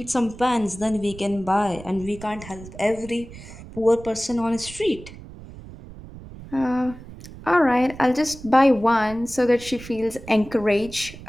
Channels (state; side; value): noise; right; rumble, 16 dB below the sound